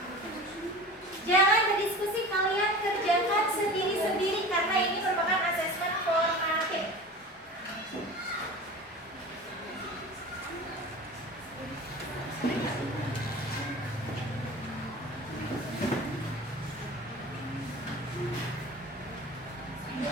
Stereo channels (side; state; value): both; normal; correlation 0.35